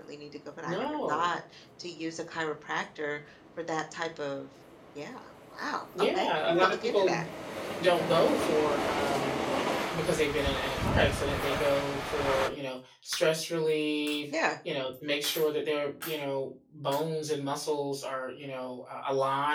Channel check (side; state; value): both; identical; correlation 1.00